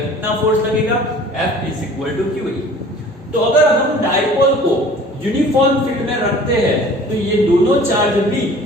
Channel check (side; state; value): both; normal; correlation 0.47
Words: फोर्स लगेगा, F is equal to Q. तो अगर हम डाइपोल को यूनिफॉर्म फील्ड में रखते हैं तो ये दोनों चार्ज भी